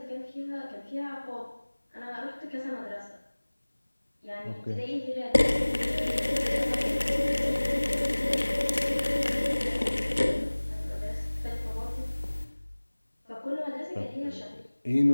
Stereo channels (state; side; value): inverted; both; correlation -1.00